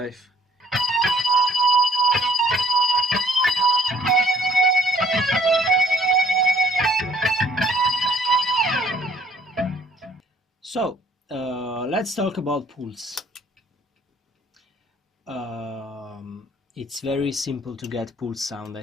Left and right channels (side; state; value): both; normal; correlation 0.58